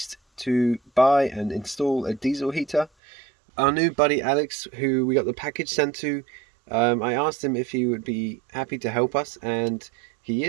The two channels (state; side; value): drops out; left; at 2.9 s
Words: to buy and install a diesel heater. Our new buddy Alex, who we got the package sent to, I asked him if he would be happy to help us, and he